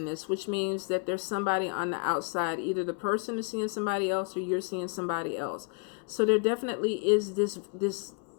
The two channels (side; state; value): right; quieter; 38.9 dB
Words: this, which means that there's somebody on the outside. Either the person is seeing somebody else or you're seeing somebody else. So there definitely is this